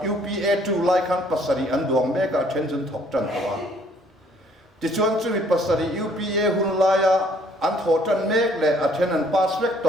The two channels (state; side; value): normal; both; correlation 0.61